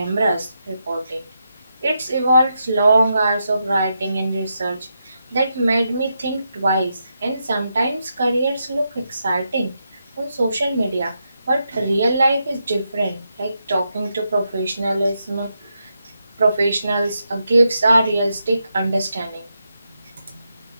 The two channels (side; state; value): both; inverted; correlation -0.83